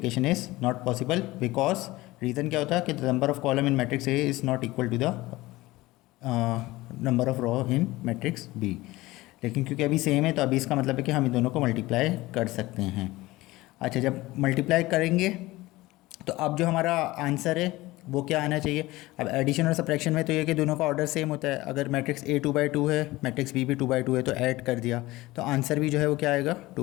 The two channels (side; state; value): right; quieter; 19.2 dB